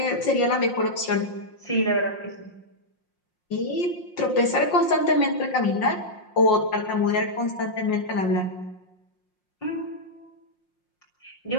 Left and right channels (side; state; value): right; late; 5.6 ms